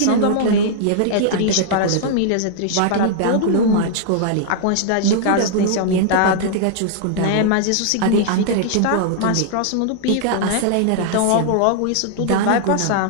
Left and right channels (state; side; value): different; both; correlation -0.01